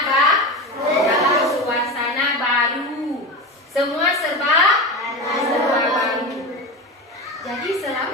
baru. Semua serba baru. Jadi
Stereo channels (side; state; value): both; normal; correlation 0.23